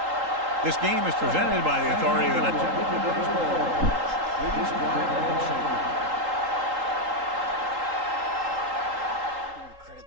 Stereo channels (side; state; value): left; late; 3.8 ms